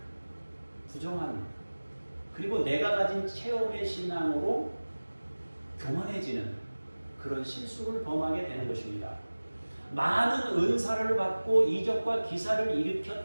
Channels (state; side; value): inverted; both; correlation -1.00